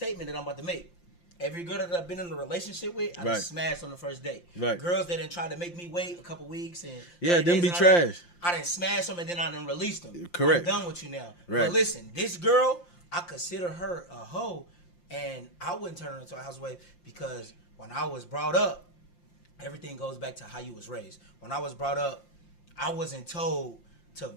that I'm about to make. Every girl that I've been in a relationship with, I done smashed on the first date. Right. Girls that done tried to make me wait a couple weeks and them be trash. I done smashed them and then I done released them. Correct. I'm done with you now. Right. But listen, this girl, I consider her a hoe. And I wouldn't turn her into a housewife because when I was brought up, everything goes back to how you was raised. When I was brought up, I wasn't told to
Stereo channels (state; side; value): late; right; 5.7 ms